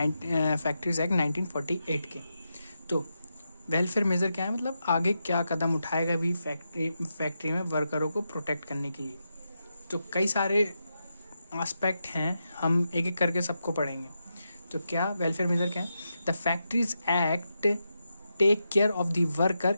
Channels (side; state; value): both; inverted; correlation -0.87